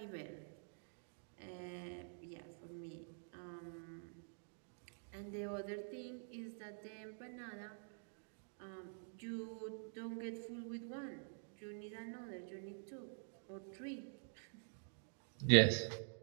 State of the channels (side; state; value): left; silent; digital silence